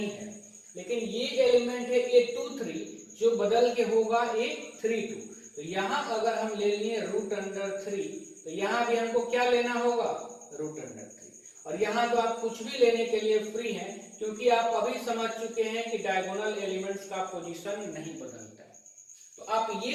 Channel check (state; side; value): identical; both; correlation 1.00